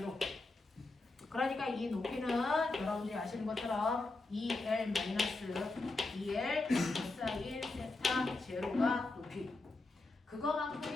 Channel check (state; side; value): quieter; right; 3.2 dB